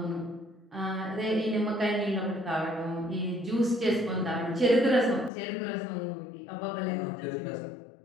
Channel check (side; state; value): right; drops out; at 5.3 s